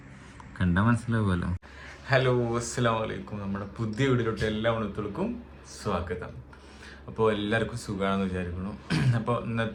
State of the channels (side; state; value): both; identical; correlation 1.00